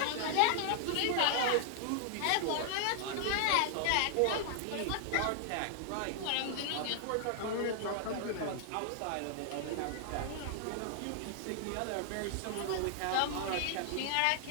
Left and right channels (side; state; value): both; different; correlation -0.01